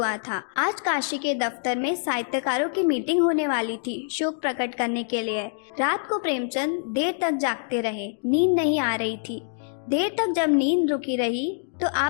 था। आज काशी के दफ्तर में साहित्यकारों की मीटिंग होने वाली थी शोक प्रकट करने के लिए। रात को प्रेमचंद देर तक जागते रहे, नींद नहीं आ रही थी। देर तक जब नींद रुकी रही तो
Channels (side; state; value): right; silent; digital silence